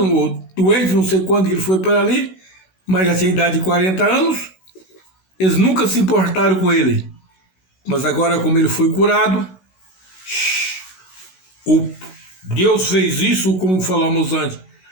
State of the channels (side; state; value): right; late; 16 ms